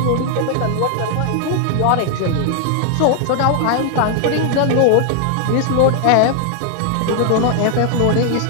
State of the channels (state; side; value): different; both; correlation 0.00